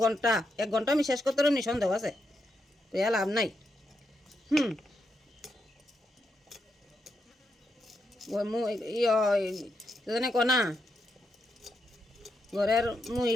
ঘন্টা। 1 ঘন্টা আমি শেষ করতে পারি সন্দেহ আছে, তুই লাভ নাই। জানে কনা ঘরের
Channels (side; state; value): both; normal; correlation 0.82